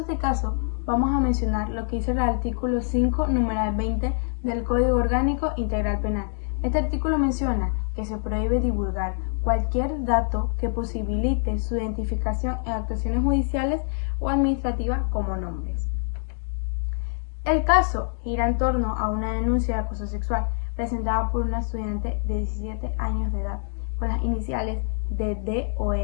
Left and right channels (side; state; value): right; silent; 57 dB below the other